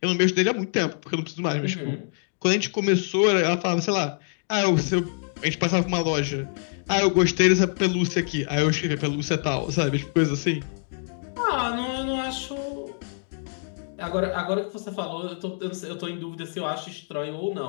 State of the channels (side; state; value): right; silent; 61 dB below the other